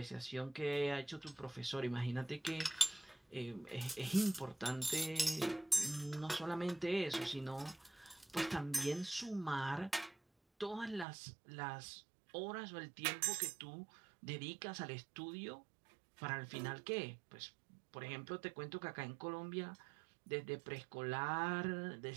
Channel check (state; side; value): drops out; left; at 11.1 s